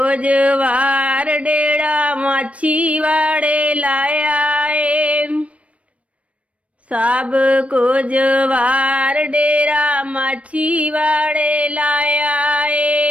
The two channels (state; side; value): late; left; 0.064 ms